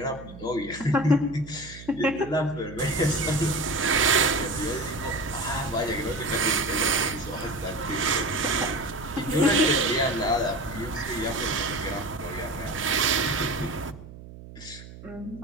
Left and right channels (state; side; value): noise; right; hum, 16 dB below the sound